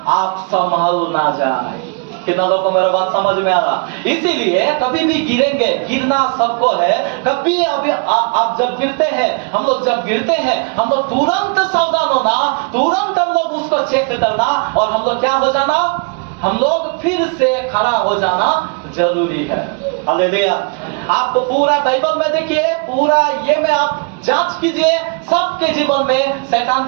आप संभल ना जाए। कितना लोगों को मेरा बात समझ में आ रहा? इसीलिए कभी भी गिरेंगे, गिरना सबको है। कभी अभी आप जब गिरते हैं, हम लोग जब गिरते हैं, हम लोग तुरंत सावधान होना, तुरंत हम लोग उसको चेक करना, और हम लोग क्या हो जाना? हम लोग फिर से खड़ा हो जाना जरूरी है। हालेलुया। आप पूरा बाइबल में देखिए, पूरा ये में आप जांच कीजिए, सबके जीवन में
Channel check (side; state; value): left; quieter; 35.7 dB